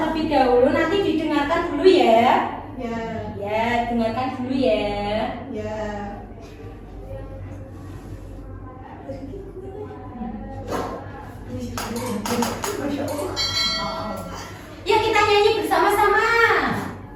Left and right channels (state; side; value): identical; both; correlation 1.00